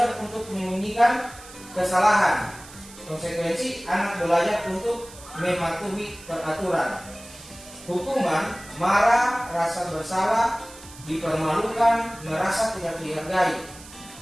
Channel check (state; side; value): noise; right; hiss, 18 dB below the sound